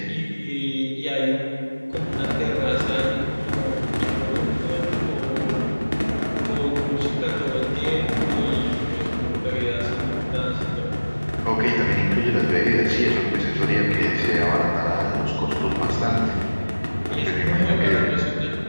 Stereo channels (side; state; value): both; inverted; correlation -1.00